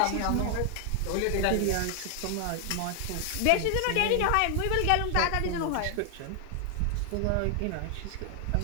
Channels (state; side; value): different; both; correlation 0.00